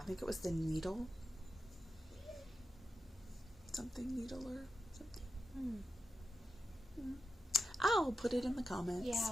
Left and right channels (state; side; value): normal; both; correlation 0.91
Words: I think it was the needle. Something needle or something. I'll put it in the comments.